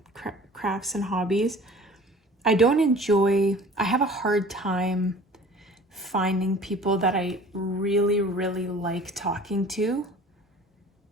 crafts and hobbies. I have a hard time finding people that I really, really like talking to.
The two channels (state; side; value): normal; both; correlation 0.46